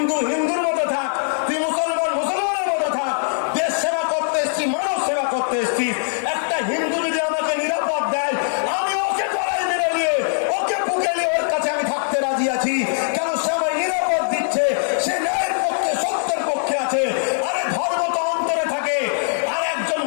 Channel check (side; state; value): right; silent; digital silence